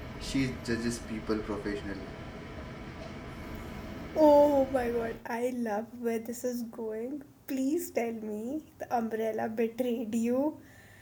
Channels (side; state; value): both; identical; correlation 1.00